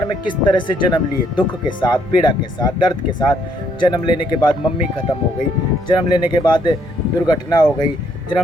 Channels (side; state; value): both; normal; correlation 0.69